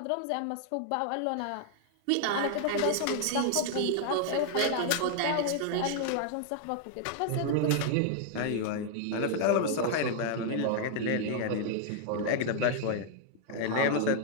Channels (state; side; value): different; both; correlation 0.00